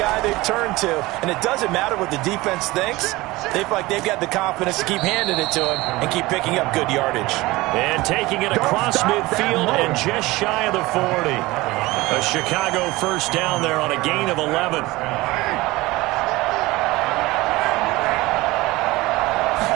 they've turned to. And it doesn't matter what the defense thinks. They feel like they've got the confidence to keep handing it to him and keep picking up good yardage. And taking it across midfield and just shy of the 40. A Chicago first down there on a gain of 11.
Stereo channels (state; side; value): quieter; left; 20.3 dB